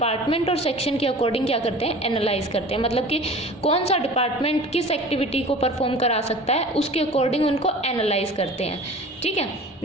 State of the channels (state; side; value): normal; both; correlation 0.41